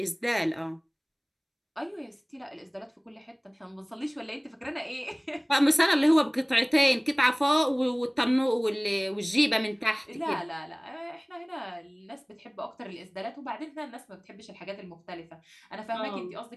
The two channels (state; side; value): identical; both; correlation 1.00